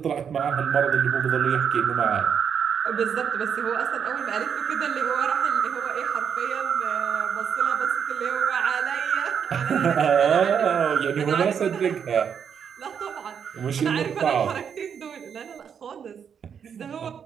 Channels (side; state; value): left; quieter; 7.5 dB